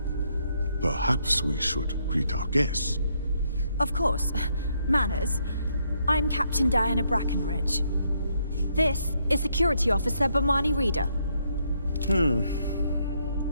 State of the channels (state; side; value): inverted; both; correlation -0.75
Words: Perhaps we should greet our guests. Of course. Manners. I'm Captain Diana Brackenridge. This is Security Officer Bomani Reader. And